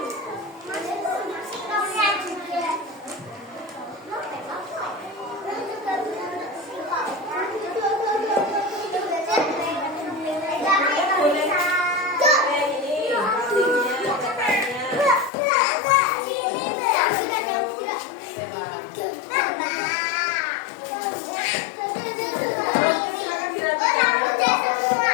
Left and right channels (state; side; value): drops out; right; at 15.3 s